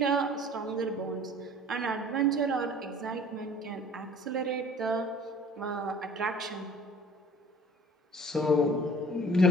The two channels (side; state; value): both; normal; correlation 0.47